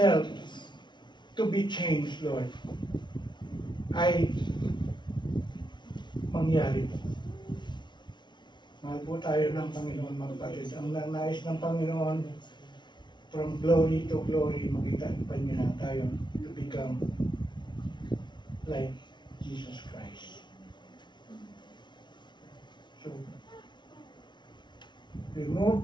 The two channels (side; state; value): right; late; 0.22 ms